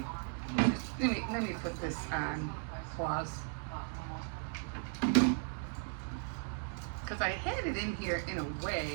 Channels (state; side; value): silent; left; 53 dB below the other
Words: Let me put this on pause, because I had it in here in a